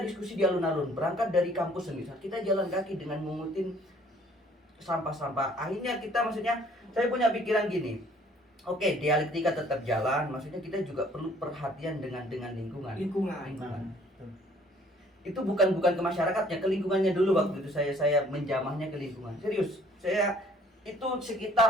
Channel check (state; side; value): normal; both; correlation 0.58